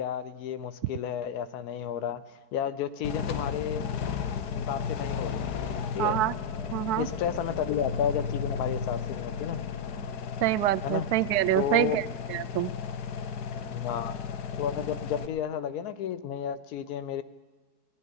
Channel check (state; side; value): late; right; 4.6 ms